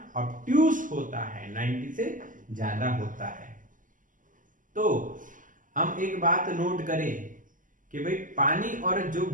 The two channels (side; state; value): left; late; 0.38 ms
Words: ऑब्ट्यूस होता है, 90 से ज्यादा होता है। तो हम एक बात नोट करें कि भाई पानी और जो